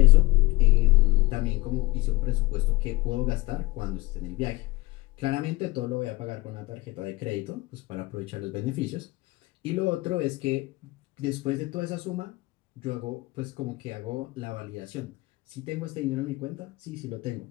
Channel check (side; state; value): right; quieter; 21.0 dB